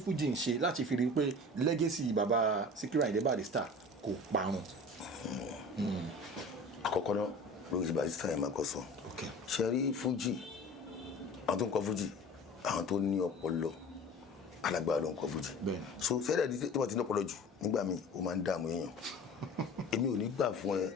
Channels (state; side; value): normal; both; correlation 0.40